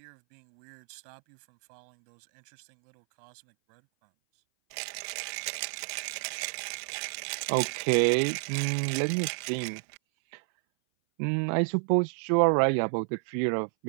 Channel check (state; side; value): silent; left; 58 dB below the other